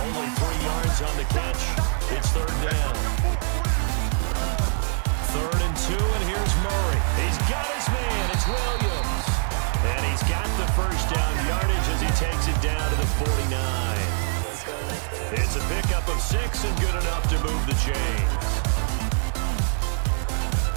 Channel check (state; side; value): silent; left; 62 dB below the other